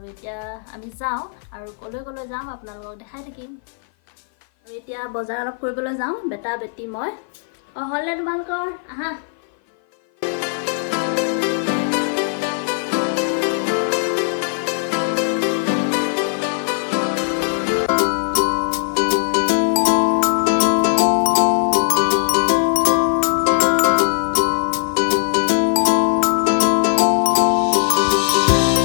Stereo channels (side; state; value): right; silent; 56 dB below the other